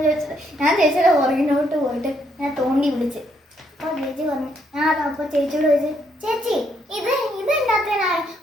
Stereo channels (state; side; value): normal; both; correlation 0.73